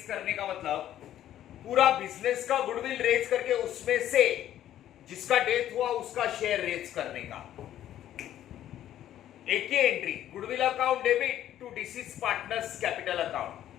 करने का मतलब पूरा बिजनेस का गुडविल रेज करके उसमें से जिसका डेथ हुआ उसका शेयर रेज करने का एक ही entry, goodwill account debit to deceased partners capital account.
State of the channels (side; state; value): right; quieter; 11.9 dB